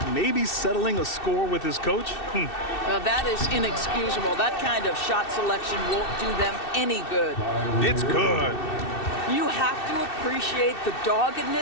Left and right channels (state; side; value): late; right; 2.6 ms